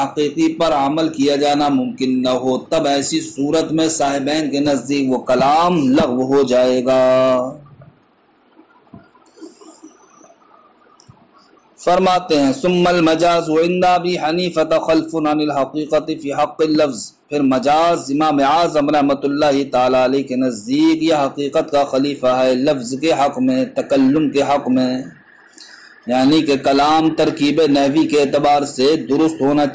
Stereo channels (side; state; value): both; identical; correlation 1.00